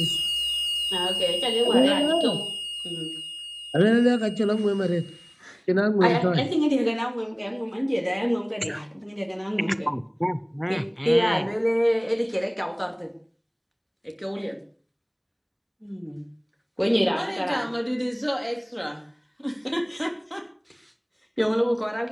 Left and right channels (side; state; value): both; identical; correlation 1.00